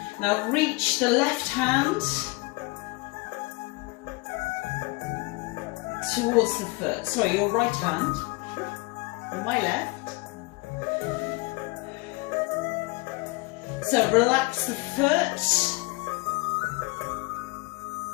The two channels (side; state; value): right; quieter; 25.4 dB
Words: Now reach the left hand towards the foot. Sorry, your right hand. My left. So relax the foot.